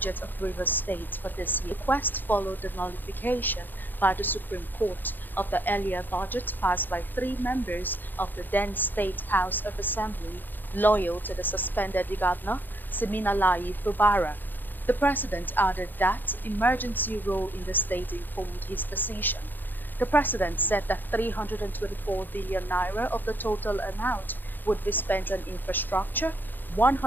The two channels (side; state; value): right; late; 0.090 ms